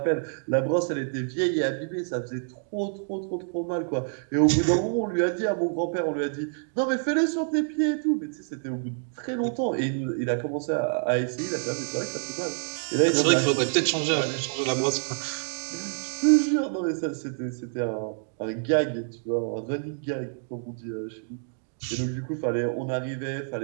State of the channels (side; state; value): left; silent; digital silence